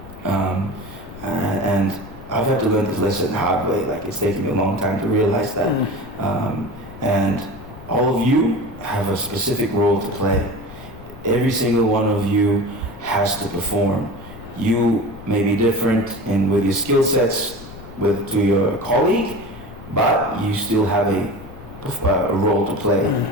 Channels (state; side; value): noise; left; rumble, 17 dB below the sound